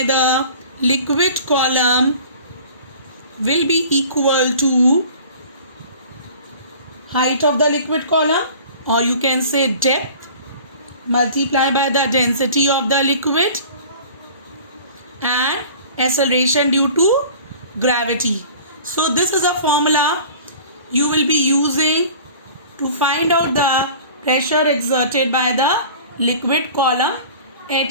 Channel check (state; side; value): inverted; both; correlation -0.44